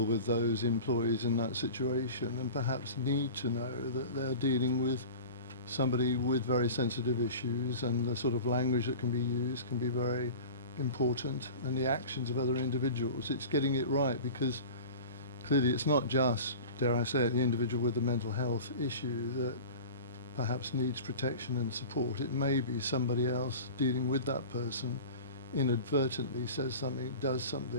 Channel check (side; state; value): both; inverted; correlation -0.36